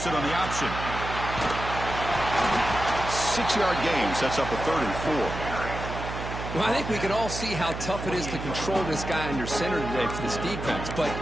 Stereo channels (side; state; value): right; noise; hum, 7 dB below the sound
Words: it on the option. 6-yard gain sets up a 3rd and 4. Well, I think we can all see how tough it is to control this guy under center today for this defense, but